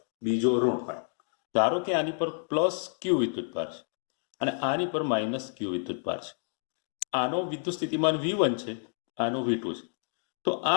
બીજો ઋણ હોય. ધારો કે આની પર પ્લસ ક્યુ વિદ્યુતભાર છે અને આની પર માઇનસ ક્યુ વિદ્યુતભાર છે. આનો વિદ્યુત સ્થિતિમાન V1 છે, આનો V2 છે. તો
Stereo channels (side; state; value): right; silent; 58 dB below the other